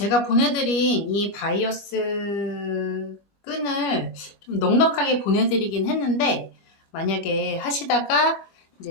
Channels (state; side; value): late; right; 21 ms